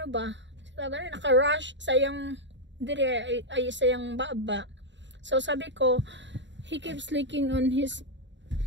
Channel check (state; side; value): late; left; 0.53 ms